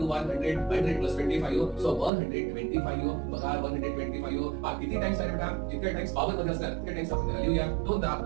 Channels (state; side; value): drops out; left; at 2.1 s